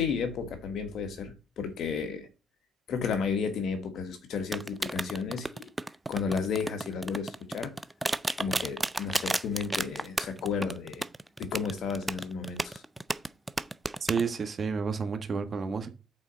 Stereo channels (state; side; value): normal; both; correlation 0.69